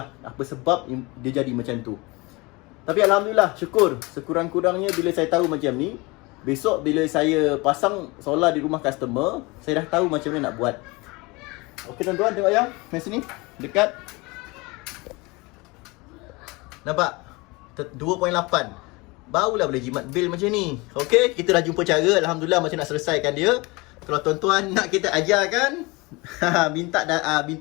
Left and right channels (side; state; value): right; quieter; 24.9 dB